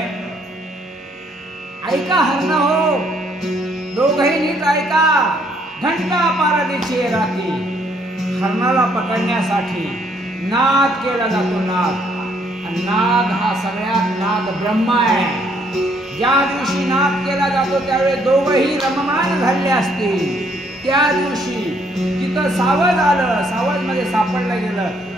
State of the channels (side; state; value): both; normal; correlation 0.67